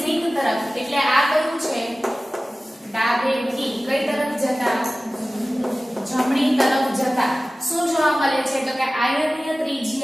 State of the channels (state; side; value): normal; both; correlation 0.97